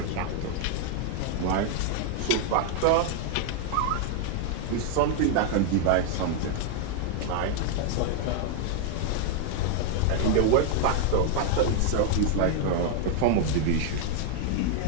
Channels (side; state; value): both; different; correlation 0.00